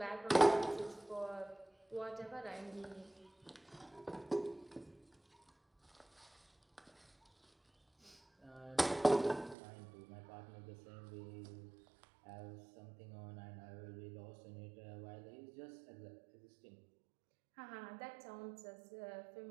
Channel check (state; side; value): drops out; left; at 9.6 s